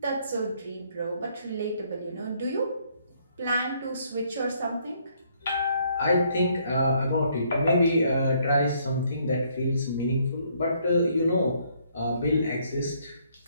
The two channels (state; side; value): inverted; both; correlation -0.68